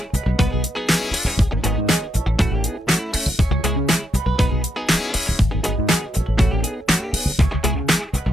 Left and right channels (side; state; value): both; normal; correlation 0.80